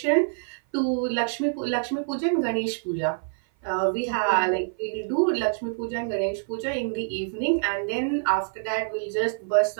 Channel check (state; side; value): silent; left; 55 dB below the other